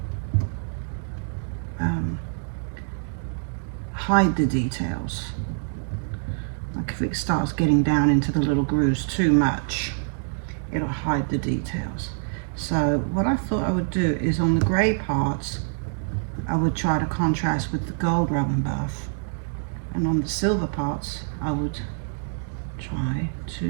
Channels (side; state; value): left; silent; digital silence